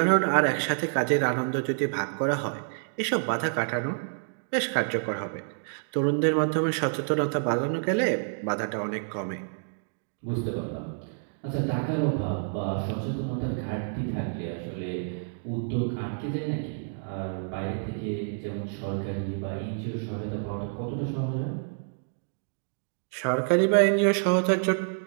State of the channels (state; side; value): silent; left; digital silence